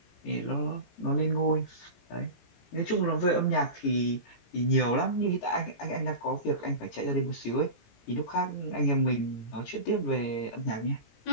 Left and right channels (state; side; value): late; right; 17 ms